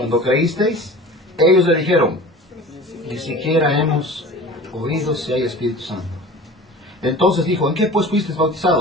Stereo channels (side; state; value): both; normal; correlation 0.40